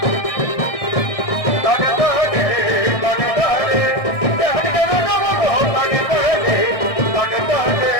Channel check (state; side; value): late; right; 1.6 ms